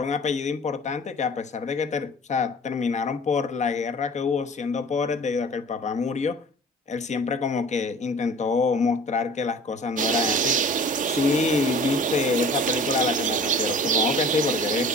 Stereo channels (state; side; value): normal; both; correlation 0.45